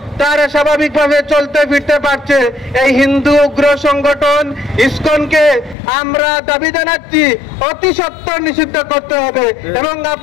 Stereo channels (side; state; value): right; drops out; at 5.8 s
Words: তারা স্বাভাবিকভাবে চলতে ফিরতে পারছে। এই হিন্দু উগ্র সংগঠন ইসকনকে আমরা দাবি জানাচ্ছি অতি সত্বর নিষিদ্ধ করতে হবে। এবং